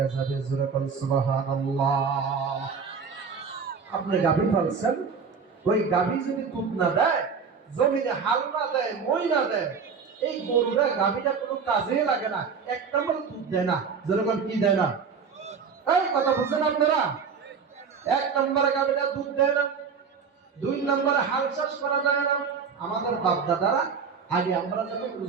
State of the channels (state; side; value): quieter; left; 5.9 dB